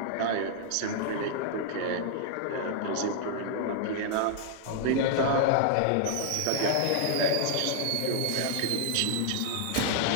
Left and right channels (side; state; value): both; different; correlation 0.00